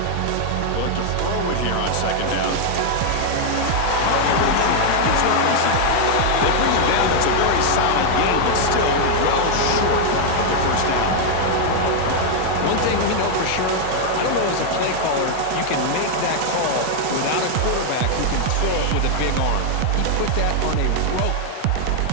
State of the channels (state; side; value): different; both; correlation 0.00